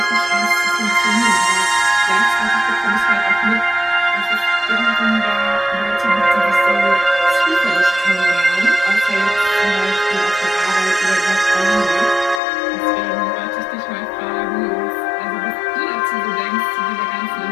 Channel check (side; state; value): right; drops out; at 12.4 s